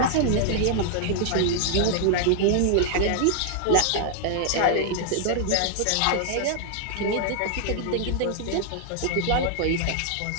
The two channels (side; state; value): both; different; correlation 0.00